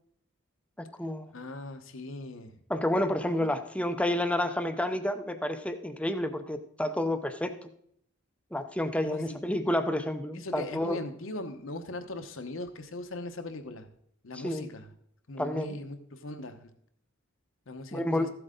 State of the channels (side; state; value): both; normal; correlation 0.76